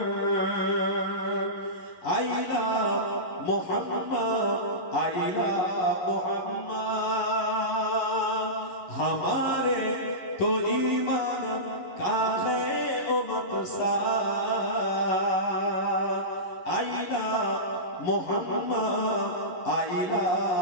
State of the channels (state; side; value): late; right; 11 ms